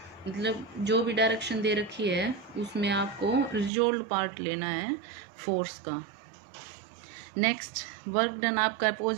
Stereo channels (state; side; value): drops out; left; at 3.7 s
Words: मतलब जो भी डायरेक्शन दे रखी है उसमें आपको रिजोल्व पार्ट लेना है फोर्स का। नेक्स्ट, वर्क डन आपका